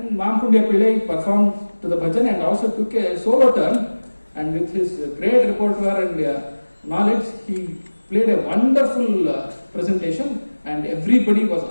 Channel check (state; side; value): inverted; both; correlation -1.00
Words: Mampundia Pillai performed to the bhajan and also took a solo turn, and with his great repertoire and knowledge, he played a wonderful presentation, and everybody was